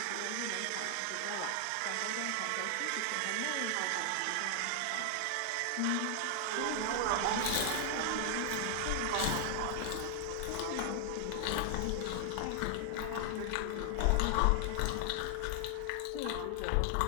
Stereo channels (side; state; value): both; different; correlation 0.00